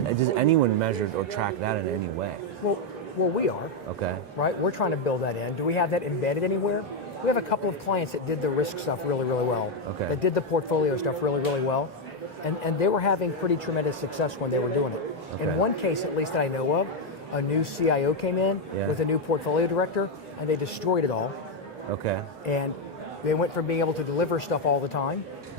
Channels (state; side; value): normal; both; correlation 0.03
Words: does anyone measure or track that in any way? Well, we are. Right? We're trying to build that in. Do we have that embedded anywhere? We have a couple of clients that did the risk stuff really, really well, that did the portfolio stuff really, really well, and they were having pretty tremendous success when they were doing it. In one case, at least that I know of, a new CIO came in with a new portfolio director, and they destroyed it all. Okay. And they went from being able to deliver stuff all the time